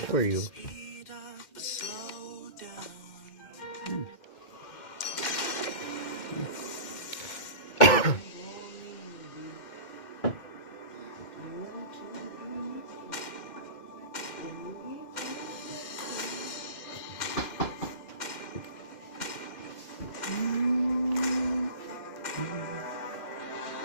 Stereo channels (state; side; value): late; right; 2.1 ms